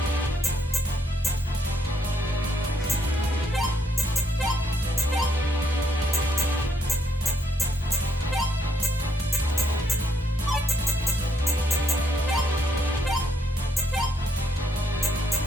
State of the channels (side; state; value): both; normal; correlation 0.74